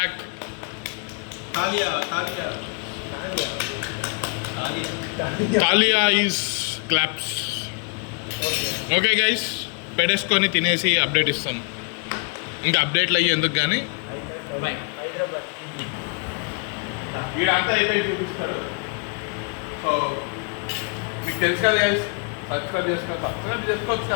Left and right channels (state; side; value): quieter; right; 35.1 dB